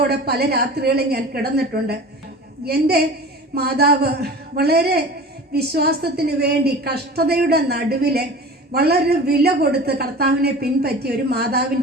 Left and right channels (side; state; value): both; normal; correlation 0.37